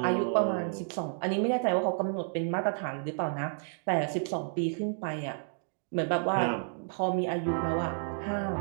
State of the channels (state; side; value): silent; left; digital silence